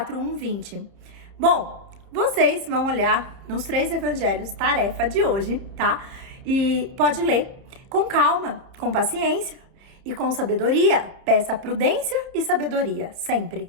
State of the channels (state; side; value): late; left; 31 ms